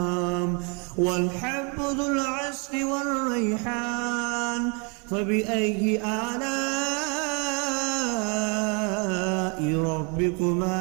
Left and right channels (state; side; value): quieter; left; 33.9 dB